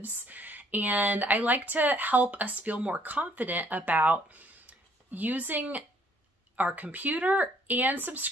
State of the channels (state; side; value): normal; both; correlation 0.63